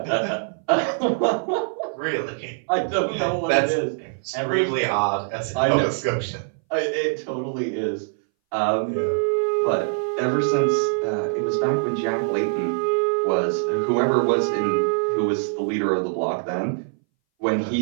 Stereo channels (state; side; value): silent; left; 61 dB below the other